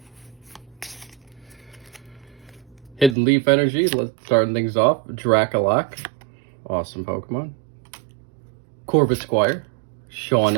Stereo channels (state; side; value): drops out; left; at 3.2 s